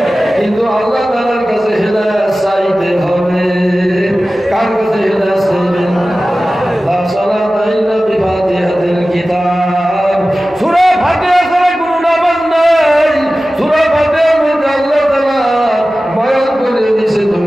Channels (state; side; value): normal; both; correlation 0.96